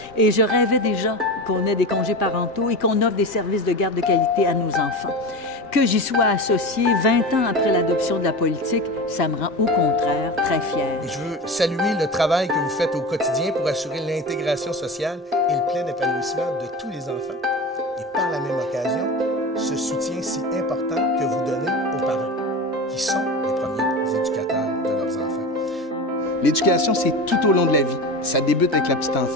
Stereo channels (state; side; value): normal; both; correlation 0.27